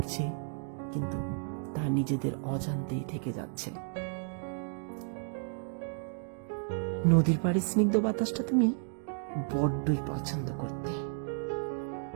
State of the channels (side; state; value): left; silent; 56 dB below the other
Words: কিন্তু তা নিজেদের অজান্তেই থেকে যাচ্ছে। নদীর পাড়ে স্নিগ্ধ বাতাসটা তুমি বড্ডই পছন্দ করতে।